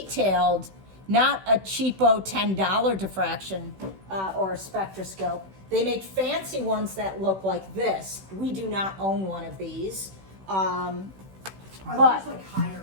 not a cheapo $10 diffraction or a spectroscope, they make fancy ones that look like this. We do not own one of these. Are But those like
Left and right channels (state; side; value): late; left; 16 ms